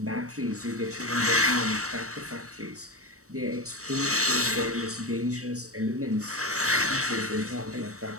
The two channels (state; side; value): late; left; 0.65 ms